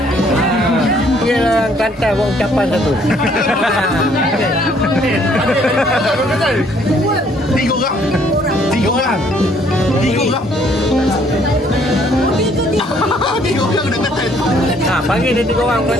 Dia orang Kelantan buat ucapan satu. Tiga orang. Tiga orang. Tiga orang. Tiga orang nak Kelantan. Ha, panggil dia 3 orang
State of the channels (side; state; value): both; normal; correlation 0.63